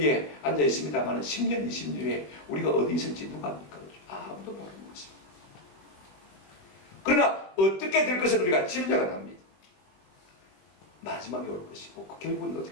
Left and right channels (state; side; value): late; right; 21 ms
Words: 앉아 있습니다만 10년, 20년 후에 우리가 어디 있을지 누가 압니까? 그죠? 아무도 모르는 것입니다. 그러나 어떻게 될 것을 우리가 짐작은 합니다. 마지막에 올 것이고, 그 결국은